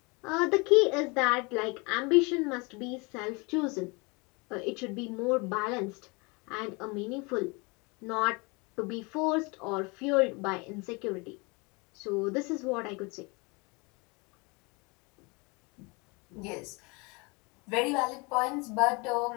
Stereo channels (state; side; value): quieter; right; 28.6 dB